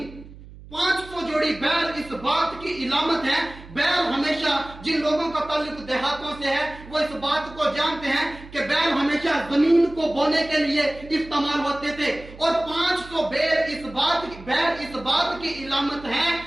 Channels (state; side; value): noise; right; hum, 18 dB below the sound